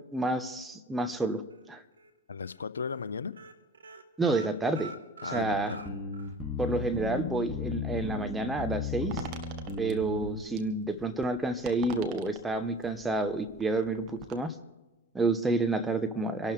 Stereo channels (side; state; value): both; normal; correlation 0.47